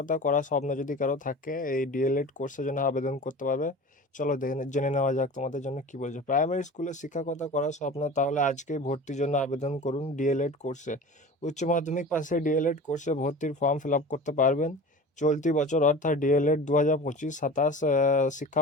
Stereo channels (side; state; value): both; normal; correlation 0.36